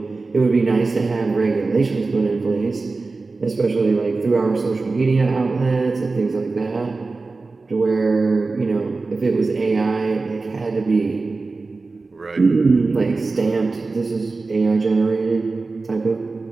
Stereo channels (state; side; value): quieter; left; 3.8 dB